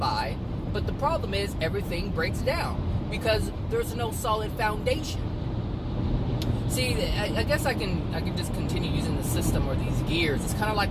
But the problem is everything breaks down because there's no solid foundation. See, I guess I can just continue using the system or these gears. It's kind of like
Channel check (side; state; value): both; identical; correlation 1.00